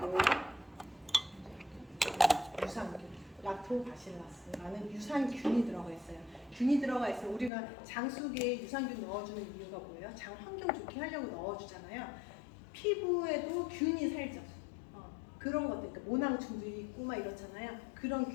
유산균, 락토바실라스라는 유산균이 들어가 있어요. 균이 들어가 있어요. 우리가 장 속에 유산균 넣어주는 이유가 뭐예요? 장 환경 좋게 하려고 넣어주잖아요. 피부에도 균이 살죠. 그런 것들, 그러니까 모낭충들이 있고 막 이렇잖아요. 그런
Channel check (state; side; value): drops out; right; at 7.5 s